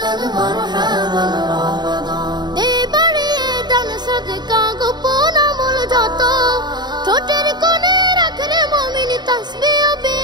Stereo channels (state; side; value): late; left; 0.21 ms